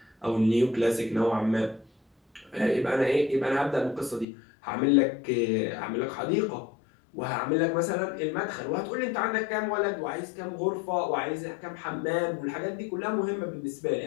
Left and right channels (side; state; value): right; drops out; at 4.2 s